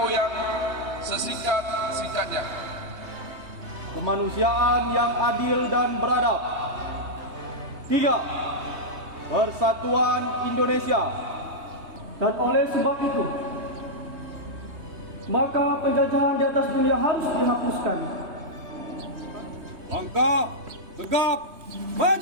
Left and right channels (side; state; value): left; late; 3.2 ms